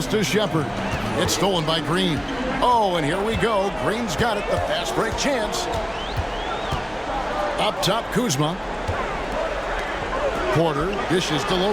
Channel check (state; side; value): identical; both; correlation 1.00